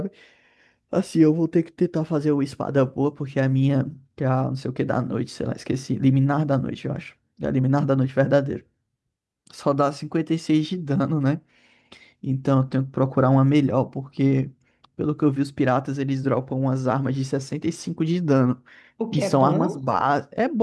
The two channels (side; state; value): both; identical; correlation 1.00